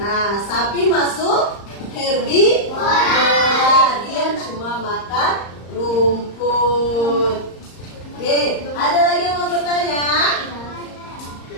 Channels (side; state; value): right; late; 35 ms